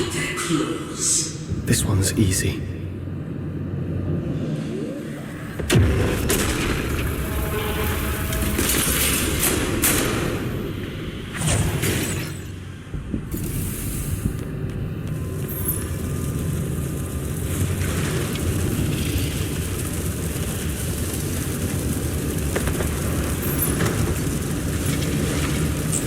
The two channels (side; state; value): both; identical; correlation 1.00